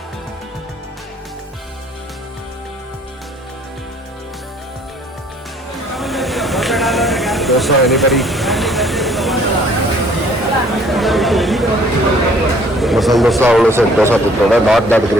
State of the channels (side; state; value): both; normal; correlation 0.57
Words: Dosa, anybody? Masala dosa, also said dosa to not that